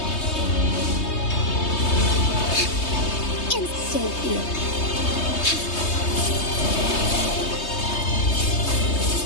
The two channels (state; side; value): late; right; 3.2 ms